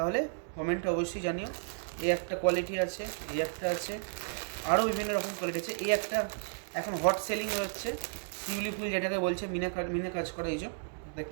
কমেন্টে অবশ্যই জানিও। এই একটা কোয়ালিটি আছে, এই একটা আছে, আরও বিভিন্ন রকম কোয়ালিটি আছে। এই একটা এখন হট সেলিং হচ্ছে, শিউলি ফুল যেটাকে বলছে, মিনা কাজ করা, এই যে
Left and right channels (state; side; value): silent; left; digital silence